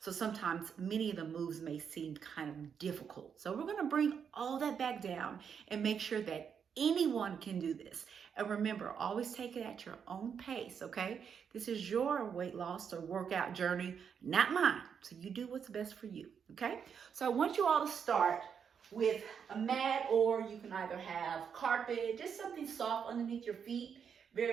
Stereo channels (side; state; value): left; quieter; 7.1 dB